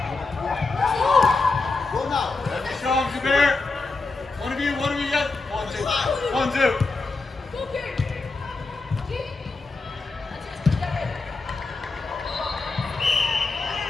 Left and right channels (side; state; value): right; quieter; 3.8 dB